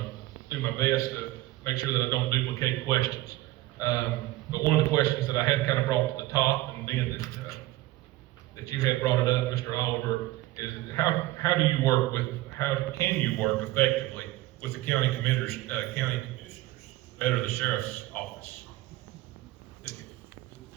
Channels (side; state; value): left; quieter; 17.5 dB